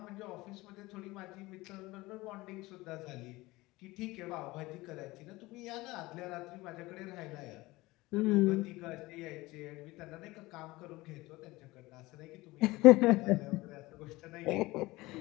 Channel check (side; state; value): right; quieter; 20.4 dB